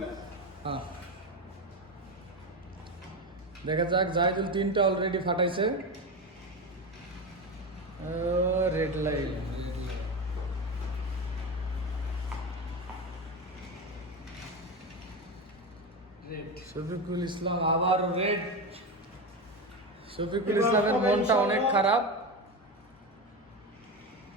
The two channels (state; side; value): normal; both; correlation 0.19